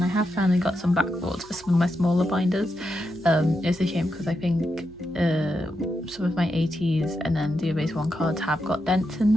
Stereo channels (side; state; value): right; noise; hum, 23 dB below the sound